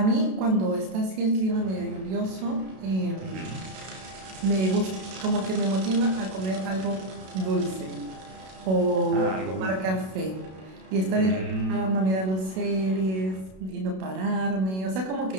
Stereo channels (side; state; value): left; late; 32 ms